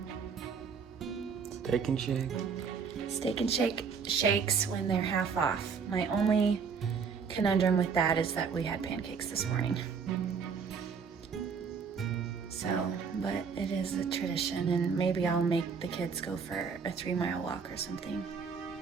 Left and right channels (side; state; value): left; quieter; 6.0 dB